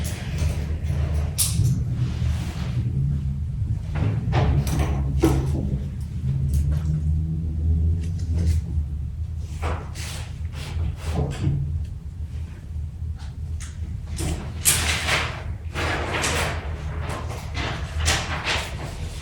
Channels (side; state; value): both; identical; correlation 1.00